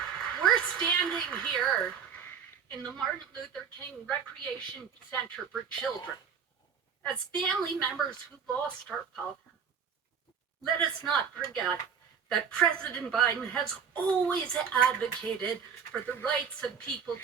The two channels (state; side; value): quieter; left; 7.1 dB